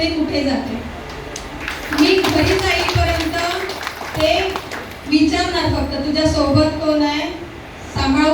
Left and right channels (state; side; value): identical; both; correlation 1.00